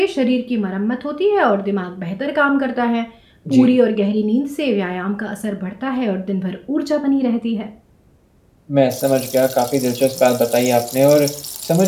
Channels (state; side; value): identical; both; correlation 1.00